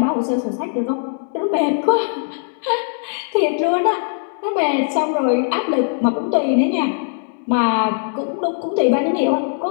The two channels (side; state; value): right; silent; digital silence